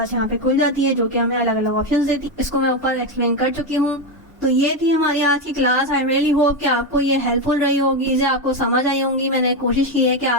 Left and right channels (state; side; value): normal; both; correlation 0.10